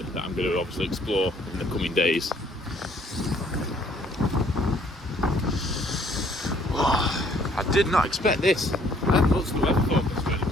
that I'm going to obviously explore in the coming days. Oh, I did not expect this. I hadn't looked at the weather forecast or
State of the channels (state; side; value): normal; both; correlation 0.62